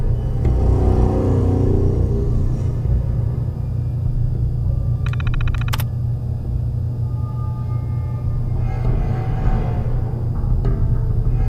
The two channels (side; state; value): both; identical; correlation 1.00